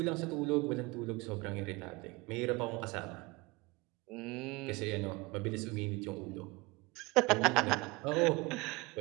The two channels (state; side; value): quieter; left; 23.8 dB